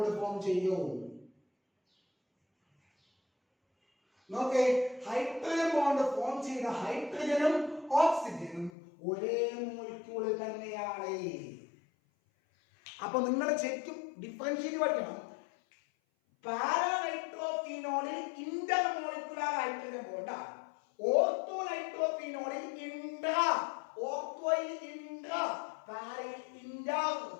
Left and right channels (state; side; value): drops out; right; at 8.7 s